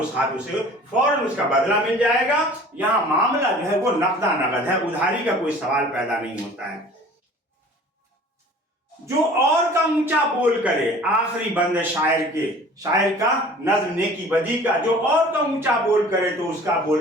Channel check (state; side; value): normal; both; correlation 0.47